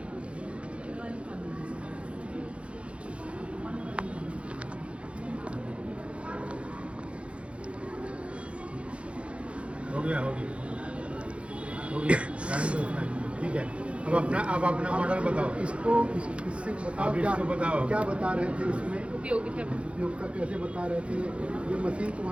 हो गया ठीक है। अब अपना मॉडल बताओ। इसको इससे बताओ, आप इसको बताओ। क्या बता रहे थे इसमें, उपयोगिता उपयोगिता कैसे बता रहे थे, ये मशीन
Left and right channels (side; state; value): left; late; 0.060 ms